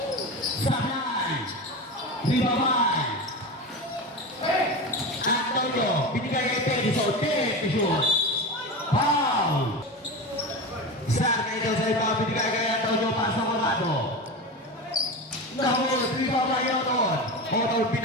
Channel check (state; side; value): normal; both; correlation 0.24